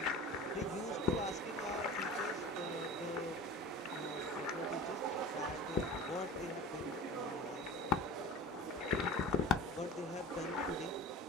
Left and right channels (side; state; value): both; normal; correlation 0.36